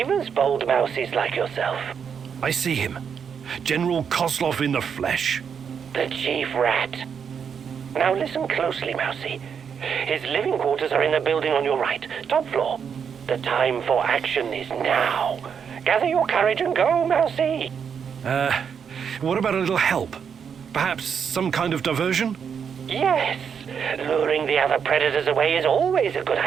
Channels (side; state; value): left; quieter; 7.1 dB